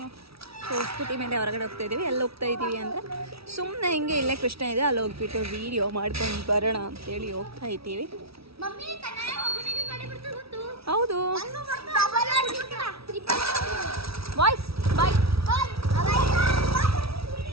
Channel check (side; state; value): left; late; 0.76 ms